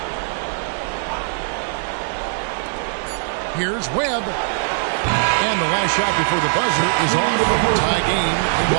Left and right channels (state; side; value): silent; left; digital silence